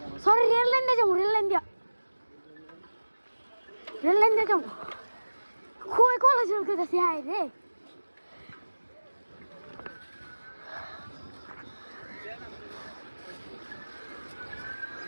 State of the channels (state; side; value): inverted; both; correlation -1.00